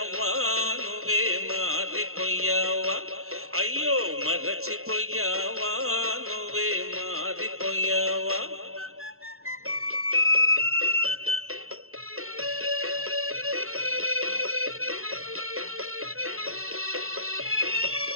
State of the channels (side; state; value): left; late; 0.62 ms